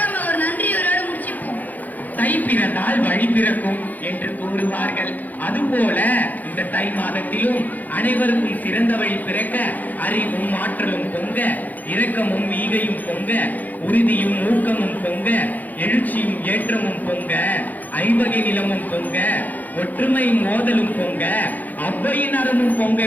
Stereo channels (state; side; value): late; right; 0.082 ms